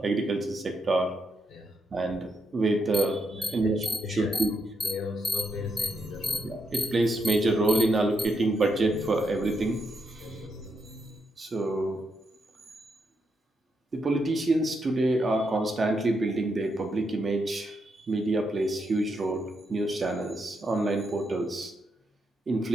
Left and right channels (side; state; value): both; normal; correlation 0.81